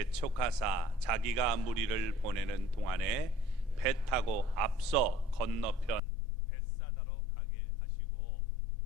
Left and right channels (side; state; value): right; drops out; at 6.0 s